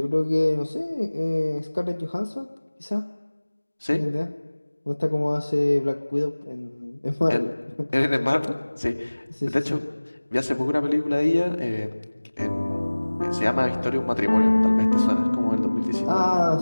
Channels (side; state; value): both; inverted; correlation -1.00